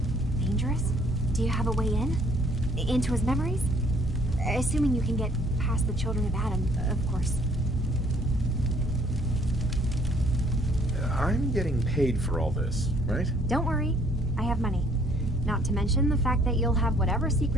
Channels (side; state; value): both; normal; correlation 0.61